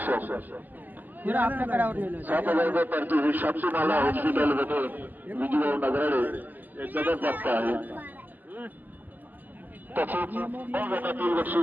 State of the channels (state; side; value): late; left; 0.085 ms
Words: आपल्याकडे शापसीमाला हॉस्पिटलमध्ये विजय नगराळे हे जबरदस्त आहे. तसेच गटातील